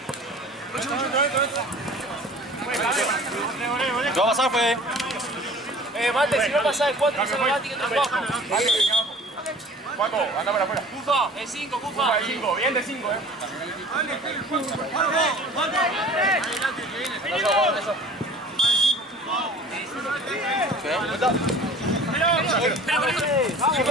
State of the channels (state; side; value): normal; both; correlation 0.45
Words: ¿Qué va a pasar, Fede? Mate, si no pasa de 4, no se me va a tirar abajo. Juaco, anda para afuera. Cufa, de 5, Cufa. De 5, bien de 5,